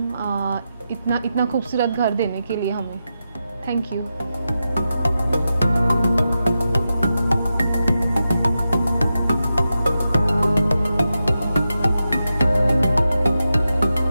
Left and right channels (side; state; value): both; inverted; correlation -0.89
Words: इतना खूबसूरत घर देने के लिए हमें. Thank you.